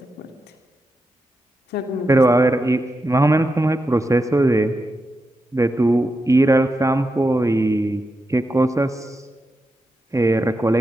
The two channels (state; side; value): normal; both; correlation 0.87